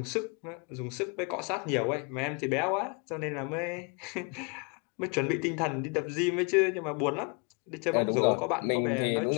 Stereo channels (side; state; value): right; quieter; 33.4 dB